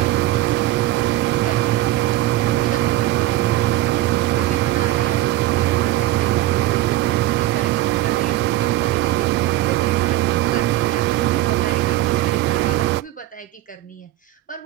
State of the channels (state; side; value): quieter; left; 15.3 dB